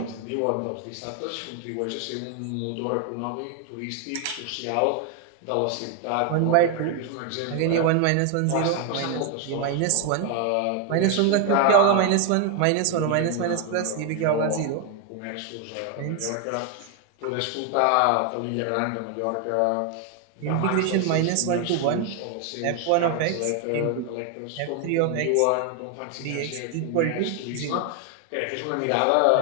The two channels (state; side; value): different; both; correlation 0.01